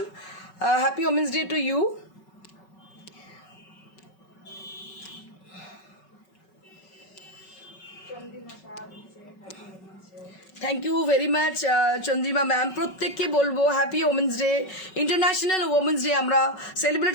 happy women's day to you. Thank you very much Chandrima ma'am. প্রত্যেককে বলবো happy women's day, international women's day আমরা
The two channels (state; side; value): late; right; 5.3 ms